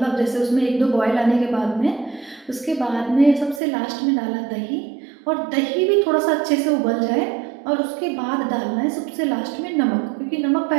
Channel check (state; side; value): drops out; left; at 3.6 s